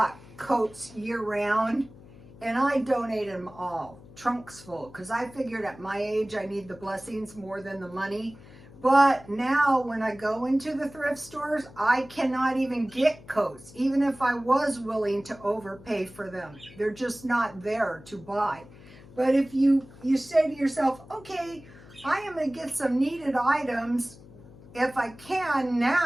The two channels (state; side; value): noise; left; hum, 20 dB below the sound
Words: coats year-round, and I donated them all, trunks full, because I figured at my age I need the blessings more than the money. But now when I go into the thrift stores, I cannot even get coats, even if I was willing to overpay for them. They're just not there to buy. But if you say to yourself, okay, I am going to get some needed items if I can